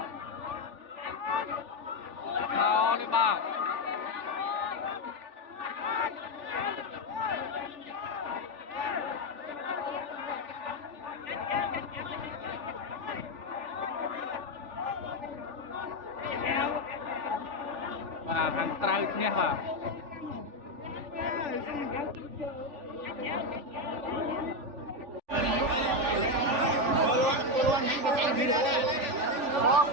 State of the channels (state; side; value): late; left; 3.4 ms